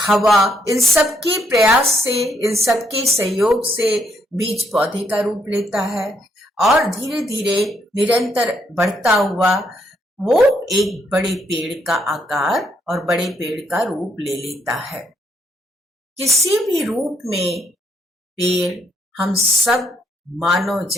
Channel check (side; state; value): both; normal; correlation 0.73